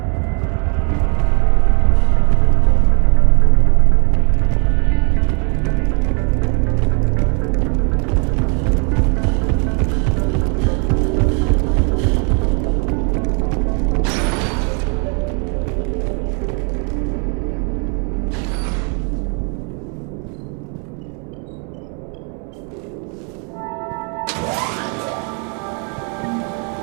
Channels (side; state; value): left; quieter; 38.0 dB